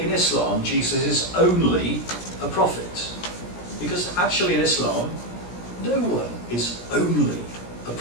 Islam, Jesus is only a prophet. Because actually in Islam, no one is only a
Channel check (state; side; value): late; right; 17 ms